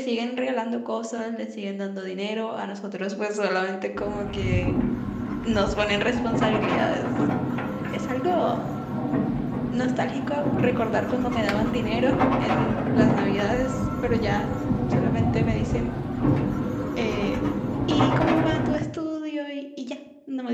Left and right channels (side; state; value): both; identical; correlation 1.00